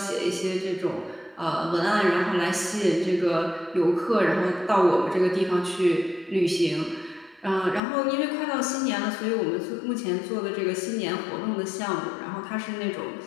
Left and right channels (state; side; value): drops out; right; at 7.8 s